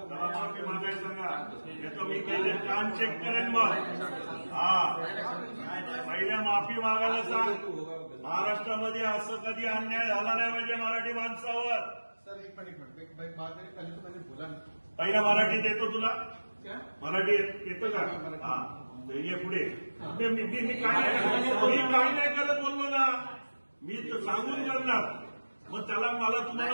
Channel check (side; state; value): both; inverted; correlation -1.00